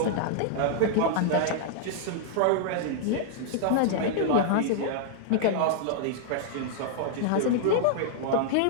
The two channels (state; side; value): different; both; correlation -0.01